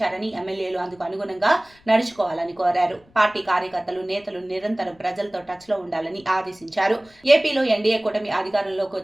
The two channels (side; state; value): left; noise; rumble, 30 dB below the sound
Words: ఎమ్మెల్యేలు అందుకు అనుగుణంగా నడుచుకోవాలని కోరారు. పార్టీ కార్యకర్తలు, నేతలు నిరంతరం ప్రజలతో టచ్ లో ఉండాలని ఆదేశించారు. ఏపీలో ఎన్డీఏ కూటమి అధికారంలోకి